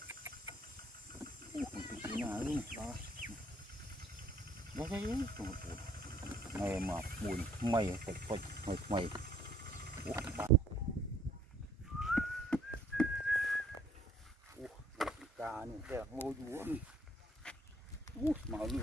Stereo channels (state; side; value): normal; both; correlation 0.61